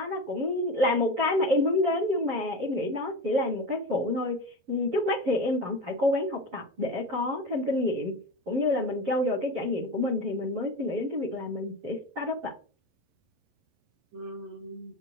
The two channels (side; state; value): left; late; 11 ms